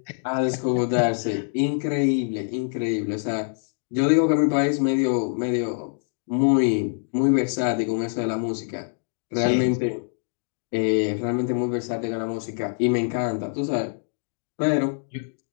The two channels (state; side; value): silent; right; digital silence